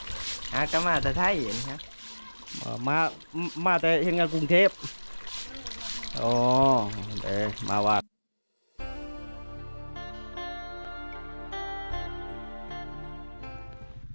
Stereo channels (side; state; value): both; inverted; correlation -1.00